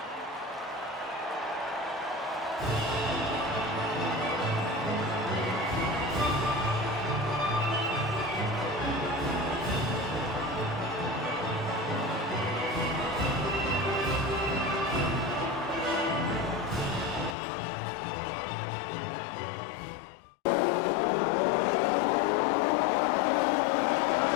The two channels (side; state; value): right; drops out; at 17.4 s